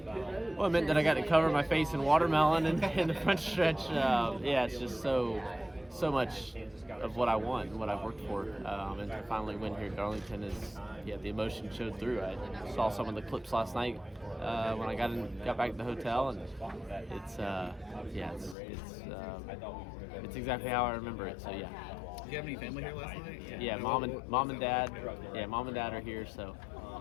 Well, it meant that I got to cover my face in watermelon in the front stretch. It's just so much of what I want and what I've worked for. And to finally win here at Darlington the emotion showed through. I saw some of the clips last night when I got back to the hotel, and it's exactly how I remember it. So yeah. Did you have any family here last night? Yeah, mom and dad. Yeah, mom and dad are here, so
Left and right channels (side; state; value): right; drops out; at 18.6 s